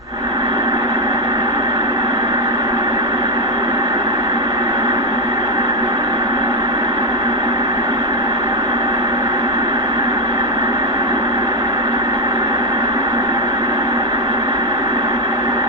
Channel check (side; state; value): both; normal; correlation 0.05